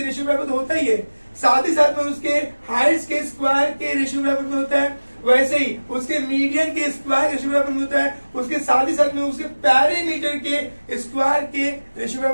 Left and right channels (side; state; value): both; inverted; correlation -1.00